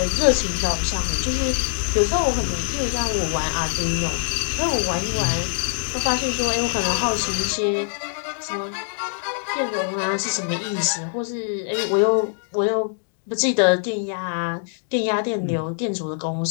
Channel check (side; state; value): right; silent; 63 dB below the other